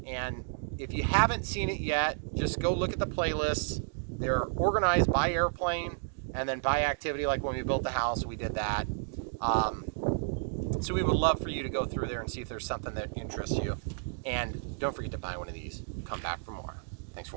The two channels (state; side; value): silent; left; digital silence